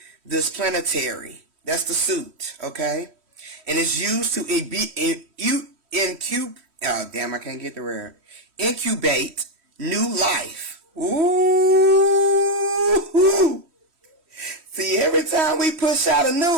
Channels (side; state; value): left; late; 3.1 ms